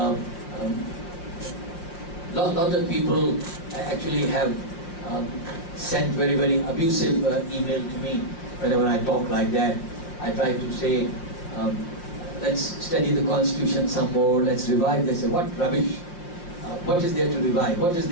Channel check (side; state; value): right; late; 5.7 ms